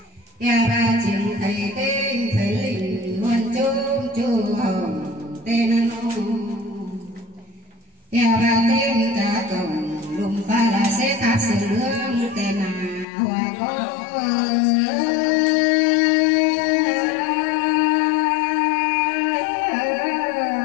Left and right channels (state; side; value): drops out; right; at 13.1 s